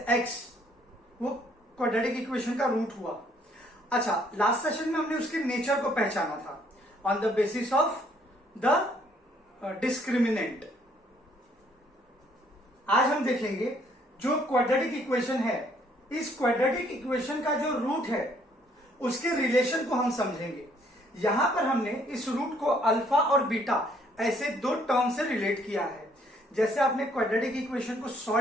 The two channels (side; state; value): both; normal; correlation 0.65